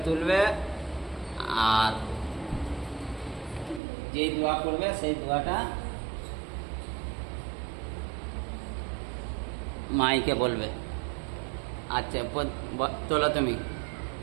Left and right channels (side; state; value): left; drops out; at 3.8 s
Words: তুলবে। আর যেই দোয়া করবে সেই দোয়াটা মাইকে বলবে। আচ্ছা তোলো, তুমি